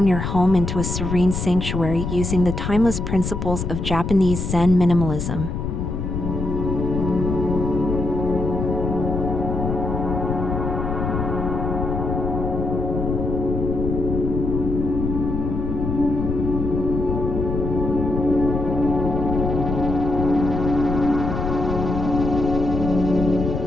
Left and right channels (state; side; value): noise; left; rumble, 3 dB below the sound